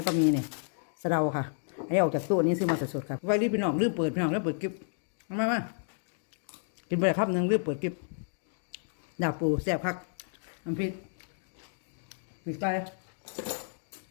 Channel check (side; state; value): right; silent; digital silence